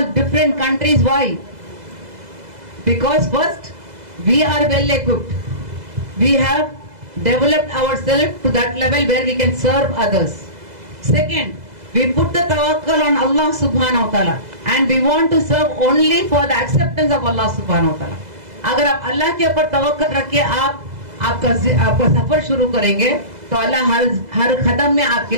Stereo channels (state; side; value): late; left; 2.0 ms